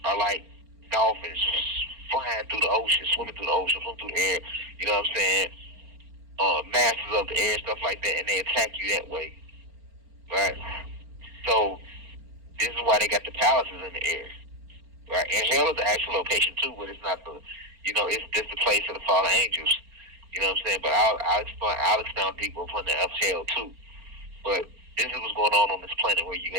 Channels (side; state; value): left; late; 4.4 ms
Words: are like dolphins flying through the ocean, swimming through the ocean, swimming through the air, you know what I'm saying? Masters of the air, stuff like that, and they attack you that way, right? So this is why they got the palaces in the air, right? And hell is the actual location too, but it's not the, it's just the place of the fallen angels. You know what I'm saying? But I'll expound deeper upon the of hell too. But this is what's going on this planet where you